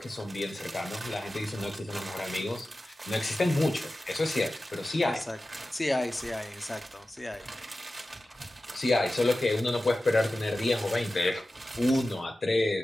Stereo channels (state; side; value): normal; both; correlation 0.95